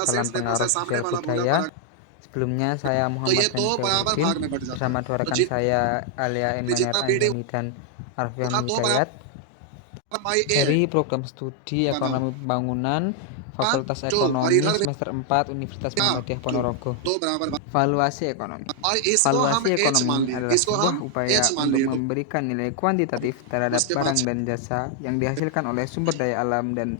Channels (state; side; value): different; both; correlation 0.00